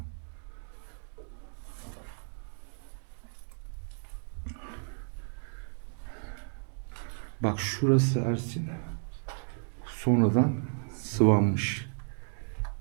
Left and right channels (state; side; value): silent; left; digital silence